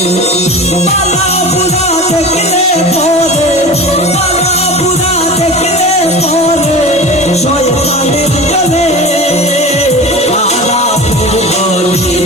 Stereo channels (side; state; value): both; normal; correlation 0.33